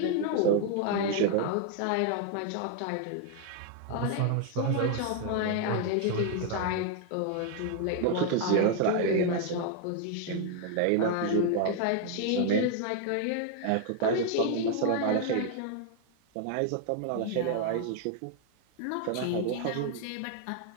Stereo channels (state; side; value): different; both; correlation 0.00